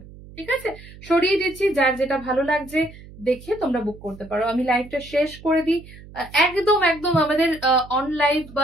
ঠিক আছে। সরিয়ে দিচ্ছি, যার যেটা ভালো লাগছে দেখে তোমরা বুক করতে পারো। আমি লাইভটা শেষ করে দিই। একদম একদম আমাদের অন লাইভ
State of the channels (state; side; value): noise; right; hum, 19 dB below the sound